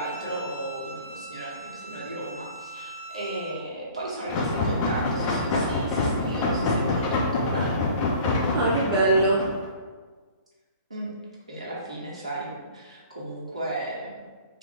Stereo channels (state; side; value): inverted; both; correlation -0.46